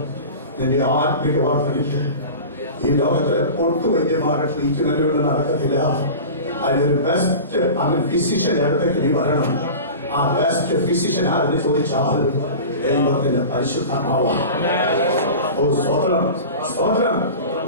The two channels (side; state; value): both; inverted; correlation -0.34